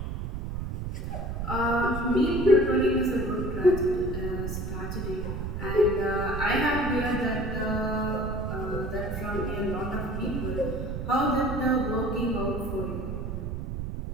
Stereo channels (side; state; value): right; noise; rumble, 4 dB below the sound